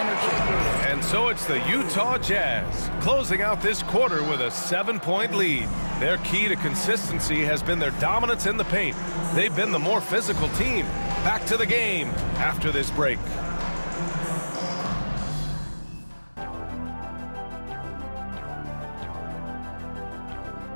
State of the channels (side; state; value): both; inverted; correlation -1.00